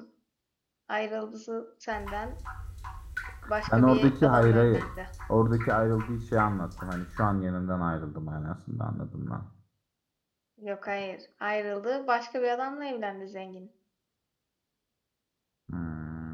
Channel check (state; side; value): identical; both; correlation 1.00